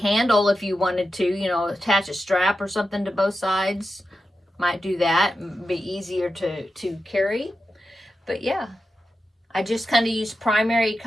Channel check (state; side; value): normal; both; correlation 0.91